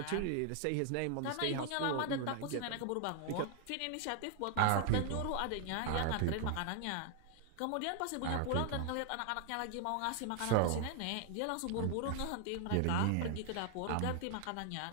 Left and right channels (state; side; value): different; both; correlation 0.00